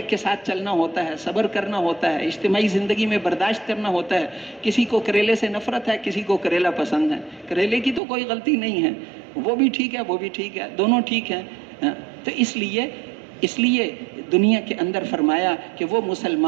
کے ساتھ چلنا ہوتا ہے، صبر کرنا ہوتا ہے، اجتماعی زندگی میں برداشت کرنا ہوتا ہے، کسی کو کریلے سے نفرت ہے، کسی کو کریلا پسند ہے، کریلے کی تو کوئی غلطی نہیں ہے، وہ بھی ٹھیک ہے، وہ بھی ٹھیک ہے، دونوں ٹھیک ہیں، تو اس لیے دنیا کے اندر فرمایا کہ وہ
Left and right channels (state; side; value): drops out; left; at 8.0 s